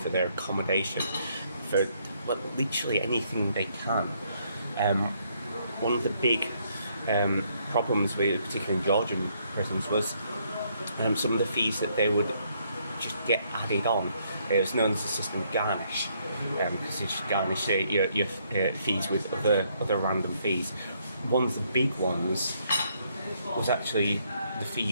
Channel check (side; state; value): both; inverted; correlation -0.71